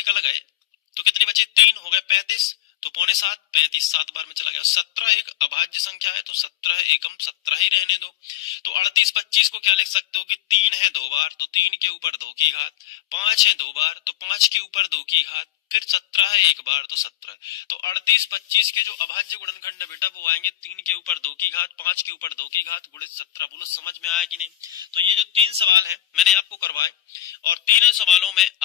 गए, तो कितने बचे 3, हो गए 35, तो पौने 7, 35, 7 बार में चला गया, 17 एक अभाज्य संख्या है, तो 17 एकम 17 ही रहने दो। तो 38 25 को क्या लिख सकते हो कि 3 है 2 बार, तो 3 के ऊपर 2 की घात, 5 है 2 बार, तो 5 के ऊपर 2 की घात, फिर 17 है एक बार, तो 17, तो 38 25 के जो अभाज्य गुणनखंड है बेटा वो आएंगे 3 के ऊपर 2 की घात, 5 के ऊपर 2 की घात गुणित 17। बोलो समझ में आया कि नहीं। तो ये जो 3 सवाल है मैंने आपको करवाए, और तीनों सवालों में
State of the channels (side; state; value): right; quieter; 12.9 dB